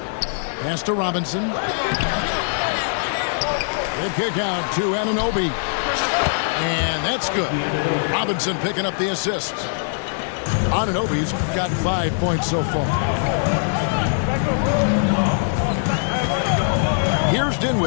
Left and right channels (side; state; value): right; silent; digital silence